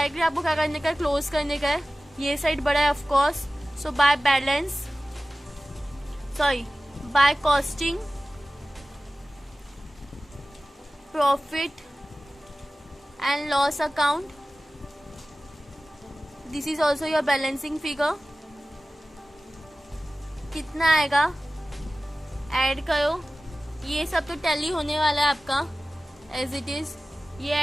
आपको क्या करने का है, क्लोज करने का है। ये साइड बड़ा है of course. So by costing profit and loss account, this is also your balancing figure. कितना आएगा ऐड करो, ये सब तो टैली होने वाला है आपका एज इट इज़। ये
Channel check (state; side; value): normal; both; correlation 0.96